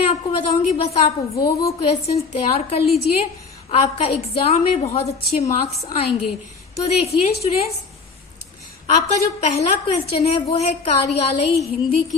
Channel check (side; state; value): right; quieter; 4.7 dB